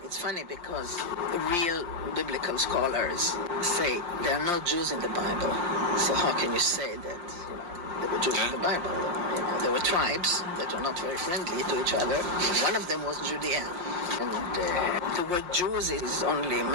it's funny because real biblical scholars say there are no Jews in the Bible. So how can you say that, there were Jews in the Bible? There were tribes that were not very friendly to each other. One of them was Judea. And the word Jews is only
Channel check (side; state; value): left; late; 5.6 ms